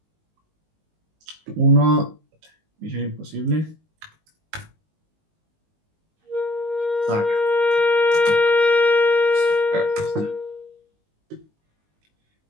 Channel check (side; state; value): left; late; 19 ms